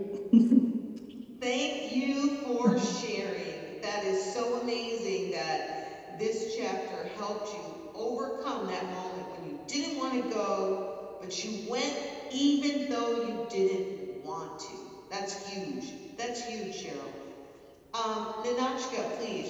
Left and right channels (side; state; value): both; identical; correlation 1.00